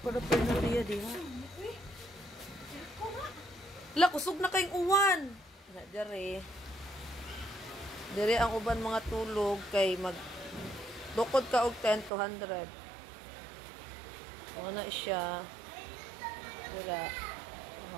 paraphernalia diha. Wala, kusog na kayong uwan. Dere ang uban mga tulog kay bukod ka og 10 to 100. Na siya. Dira.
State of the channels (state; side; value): drops out; left; at 12.1 s